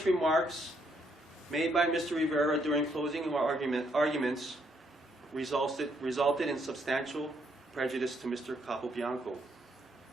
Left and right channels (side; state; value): both; normal; correlation 0.73